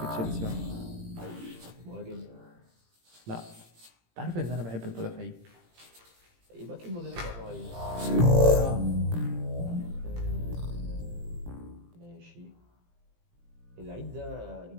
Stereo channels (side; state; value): left; late; 18 ms